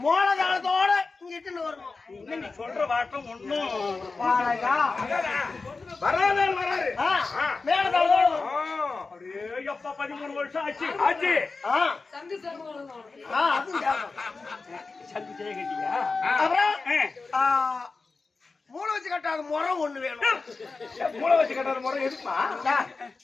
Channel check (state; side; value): quieter; right; 4.1 dB